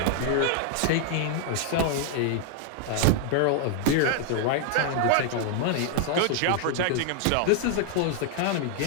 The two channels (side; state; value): both; different; correlation 0.00